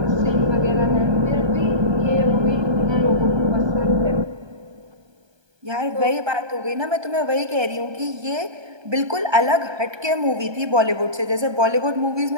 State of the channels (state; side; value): late; left; 1.3 ms